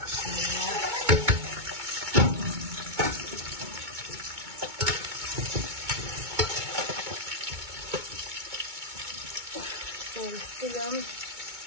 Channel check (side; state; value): left; late; 2.2 ms